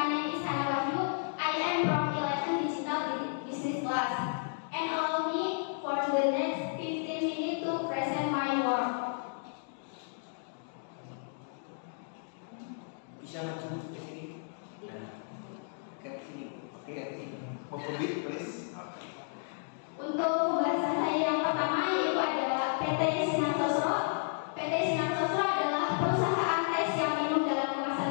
name is Hana Wahyu. I am from 11 Digital Business class, and allow me for the next 15 minutes to present my work. Bisa maju ke sini. Nah, ke sini. Oke, ke sini. Pembit, please. Oke. Untuk pembahasan saya yang pertama yaitu adalah PT Sinar Sosro. PT Sinar Sosro adalah perusahaan tes yang minum dalam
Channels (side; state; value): right; silent; digital silence